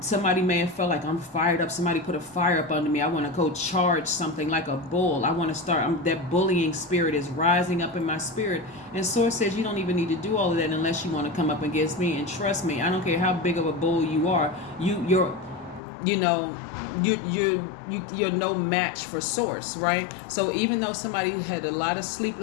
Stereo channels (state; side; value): drops out; right; at 15.8 s